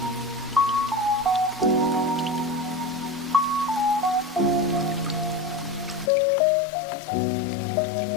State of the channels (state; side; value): drops out; right; at 6.1 s